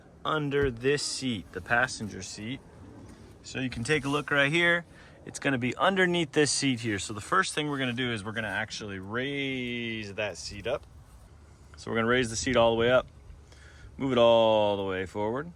under this seat, the passenger seat. So you can take a look right here. It's going to be underneath this seat here. So the first thing we're going to do is we're going to actually raise that seat up. So we're going to raise the seat all the way up. Move it all the way forward.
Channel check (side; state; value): both; identical; correlation 1.00